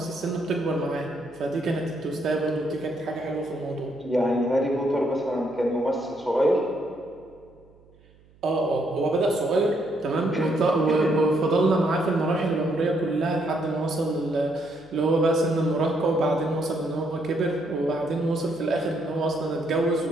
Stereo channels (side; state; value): right; noise; hum, 28 dB below the sound